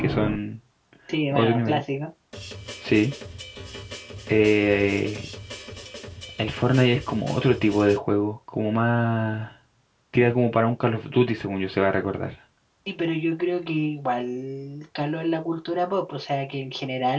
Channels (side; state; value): both; identical; correlation 1.00